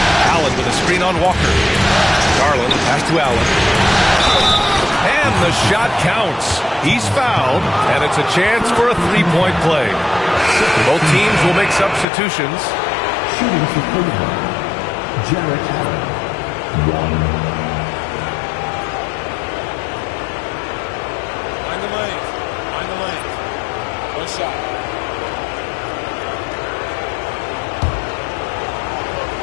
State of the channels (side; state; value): right; drops out; at 12.1 s